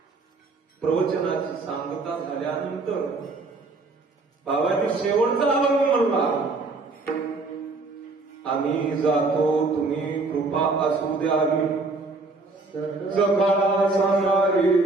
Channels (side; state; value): left; quieter; 3.6 dB